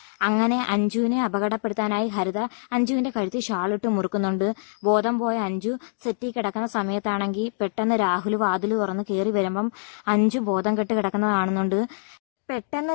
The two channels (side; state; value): right; silent; digital silence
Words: അങ്ങനെ അഞ്ജുവിനെ അപകടപ്പെടുത്താനായി ഹരിത അഞ്ജുവിന്റെ കഴുത്തിൽ ഷാളിട്ട് മുറുക്കുന്നുണ്ട്. ബോധം പോയ അഞ്ജു സെറ്റിൽ കിടക്കുന്ന സമയത്താണെങ്കിൽ പെട്ടെന്ന് രാഹുൽ വാതിൽ തുറന്ന് കയറി വരുമ്പം അഞ്ജു ബോധം കെട്ട് കിടക്കുന്നത് കാണുന്നുണ്ട്. പെട്ടെന്ന്